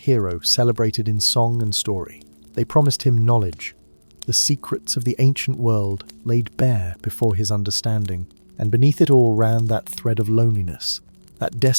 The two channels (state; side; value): inverted; both; correlation -1.00